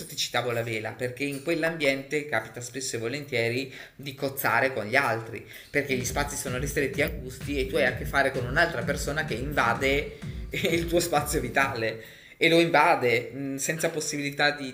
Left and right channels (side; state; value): both; identical; correlation 1.00